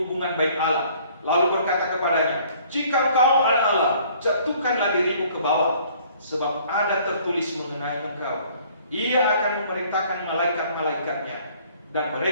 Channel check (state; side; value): inverted; both; correlation -0.57